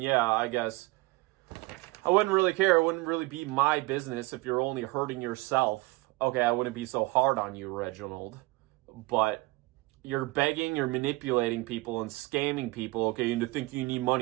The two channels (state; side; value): quieter; left; 22.2 dB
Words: I guess I wouldn't really care. It wouldn't really be my business if you're only hurting yourself. Okay, I wouldn't be so hard on you, Reginald. But you're begging, you're manipulating people and scamming people, okay, into thinking you need